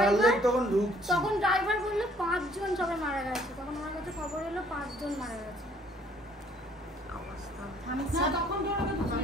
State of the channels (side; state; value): both; normal; correlation 0.60